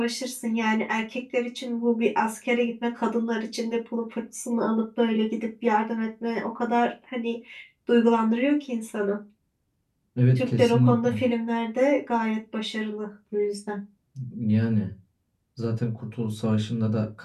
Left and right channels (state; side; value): identical; both; correlation 1.00